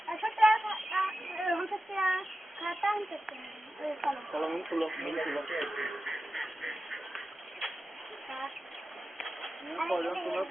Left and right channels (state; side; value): normal; both; correlation 0.93